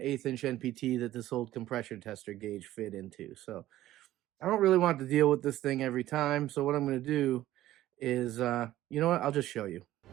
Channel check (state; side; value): quieter; left; 14.5 dB